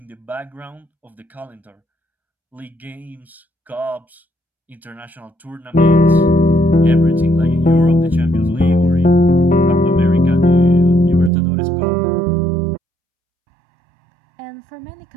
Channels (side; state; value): left; drops out; at 11.3 s